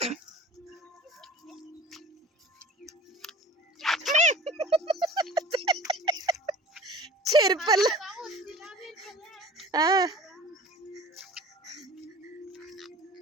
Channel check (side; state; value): both; normal; correlation 0.42